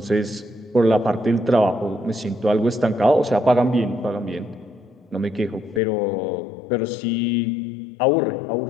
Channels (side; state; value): right; drops out; at 5.8 s